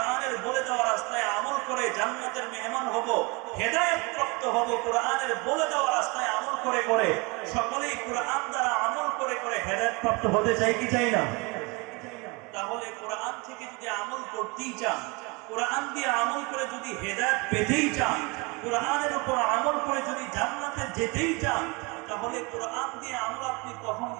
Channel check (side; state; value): left; quieter; 27.8 dB